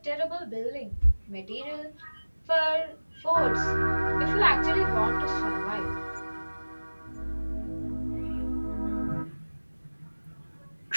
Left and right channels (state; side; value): inverted; both; correlation -1.00